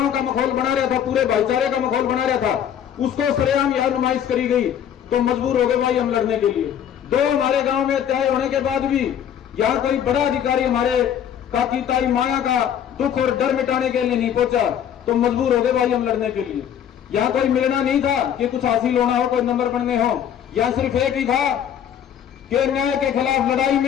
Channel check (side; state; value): right; quieter; 9.4 dB